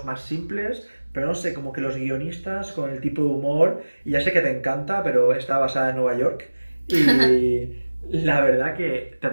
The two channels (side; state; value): both; inverted; correlation -1.00